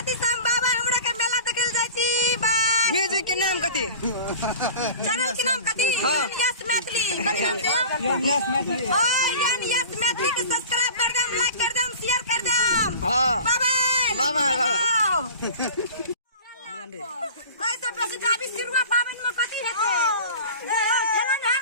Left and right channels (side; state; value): both; inverted; correlation -0.38